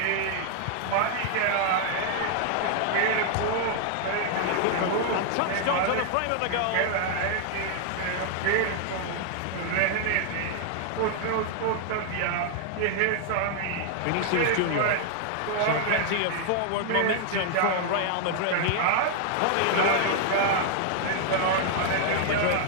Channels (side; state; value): both; different; correlation 0.00